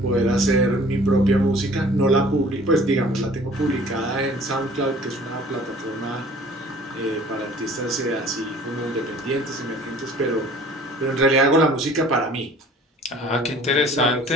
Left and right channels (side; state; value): both; normal; correlation 0.50